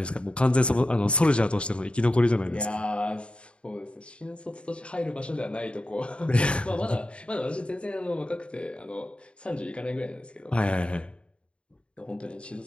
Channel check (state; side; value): late; right; 0.057 ms